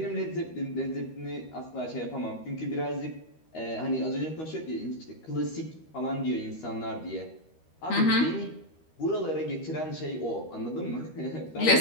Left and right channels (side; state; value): right; late; 13 ms